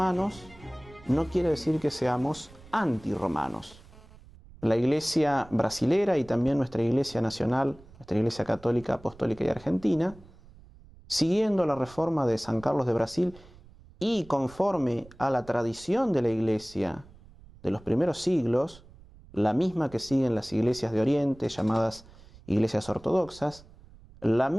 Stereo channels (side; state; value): right; noise; rumble, 23 dB below the sound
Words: no quiere decir que seamos antirromanos. La Iglesia brasilera y también nuestra Iglesia nacional, nuestra Iglesia Católica, Apostólica y Argentina, siguiendo la reforma de San Carlos de Brasil y conforme a la tradición de la Iglesia de los primeros siglos, la misma que siguen las iglesias de Oriente, llamadas iglesias ortodoxas, la